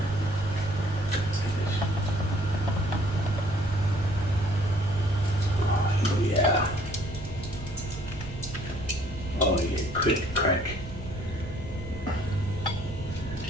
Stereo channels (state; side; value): noise; right; rumble, 12 dB below the sound